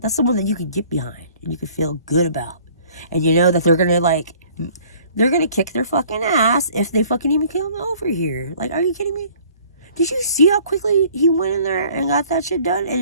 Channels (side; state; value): both; inverted; correlation -0.54